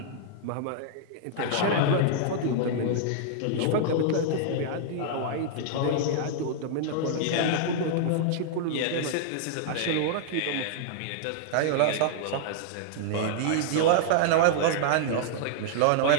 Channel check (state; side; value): different; both; correlation -0.01